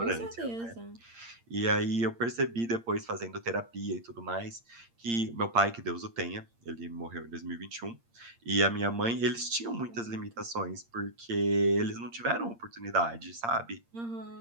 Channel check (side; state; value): left; late; 8.7 ms